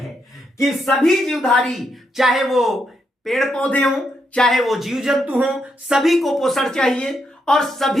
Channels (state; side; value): normal; both; correlation 0.80